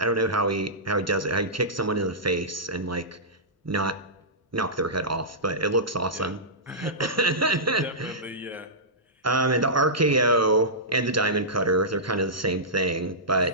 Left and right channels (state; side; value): normal; both; correlation -0.16